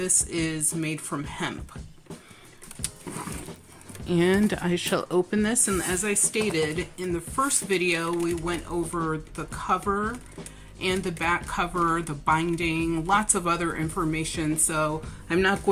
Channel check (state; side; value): identical; both; correlation 1.00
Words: is made from hemp. And I shall open this, and as I stated in the first video, we went over the cover and the back cover, the binding, lots of other information. So I'm not